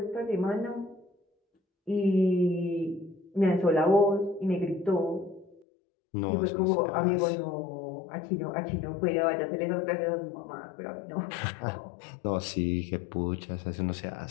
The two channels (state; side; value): drops out; right; at 5.7 s